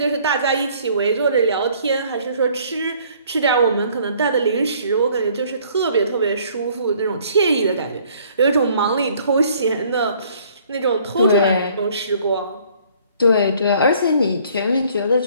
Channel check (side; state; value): both; inverted; correlation -0.59